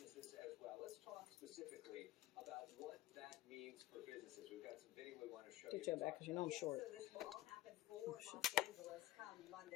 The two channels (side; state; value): right; quieter; 15.6 dB